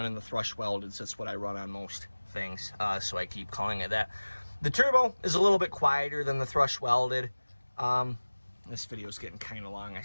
the Thrush welded. That's what I run on most things, so I keep calling it that. The Turbo is a little bit quieter than the Thrush welded. This video is getting kind of long. I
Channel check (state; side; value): inverted; both; correlation -1.00